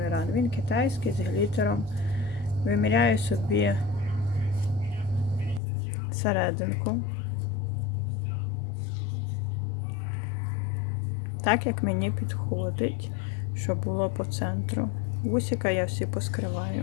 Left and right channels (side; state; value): right; drops out; at 5.6 s